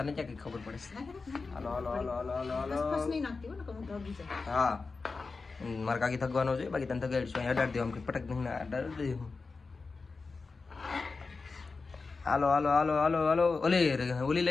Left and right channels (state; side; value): quieter; right; 4.2 dB